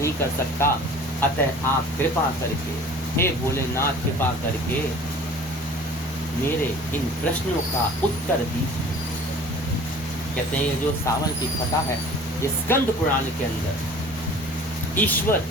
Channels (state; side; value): normal; both; correlation 0.46